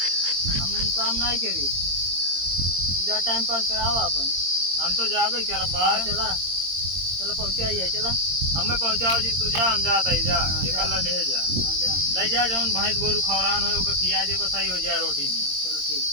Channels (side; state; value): left; late; 22 ms